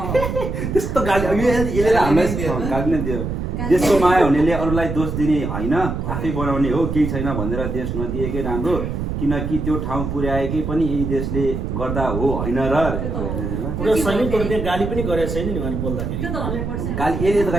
त्यस्तो गाली यसले हामीलाई गाली नै दियो देशको माया हुनेले अरूलाई दोष दिने होइन आफै बनाउने हो केही छैन भनेर देश नदिएकै राम्रो किनकि त्यो ठाउँ पुर्याएकै पनि यही देशले गर्दा हो होइन र गाली पनि गरेको छैन नि उहाँले बोल्दाखेरि गाली यसले त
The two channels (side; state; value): right; noise; rumble, 3 dB below the sound